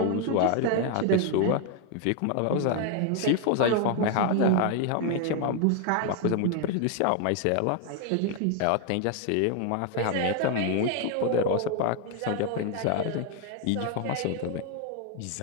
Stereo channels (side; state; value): both; different; correlation 0.00